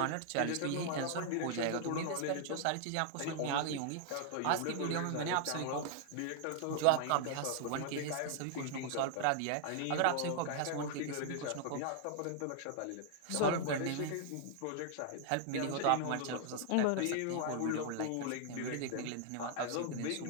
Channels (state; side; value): different; both; correlation 0.00